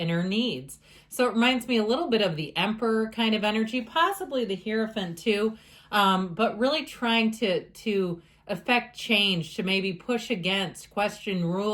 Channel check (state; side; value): identical; both; correlation 1.00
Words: needs. So it reminds me a little bit of the Emperor kind of energy, possibly the Hierophant too, but really trying to affect change, to maybe push against, question